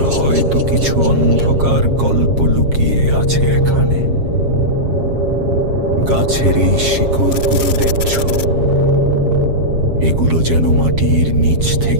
হয়তো কিছু অন্ধকার গল্প লুকিয়ে আছে এখানে। গাছের এই শিকড়গুলো দেখছ, এগুলো যেন মাটির নিচ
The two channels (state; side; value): late; left; 7.4 ms